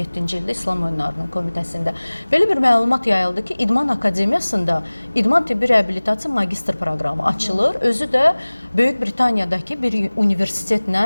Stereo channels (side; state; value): both; inverted; correlation -1.00